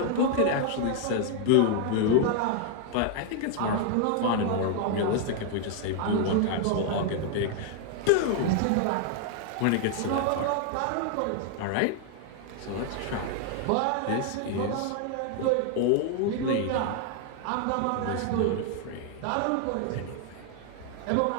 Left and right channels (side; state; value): both; different; correlation 0.00